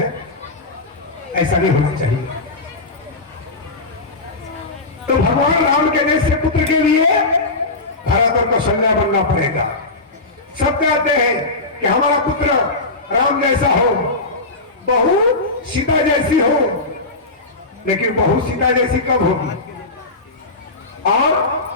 ऐसा नहीं होना चाहिए। तो भगवान राम के जैसे पुत्र के लिए भरत और कौशल्या बनना पड़ेगा। सब कहते हैं कि हमारा पुत्र राम जैसा हो, बहू सीता जैसी हो, लेकिन बहू सीता जैसी कब होगी और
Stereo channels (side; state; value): right; quieter; 3.3 dB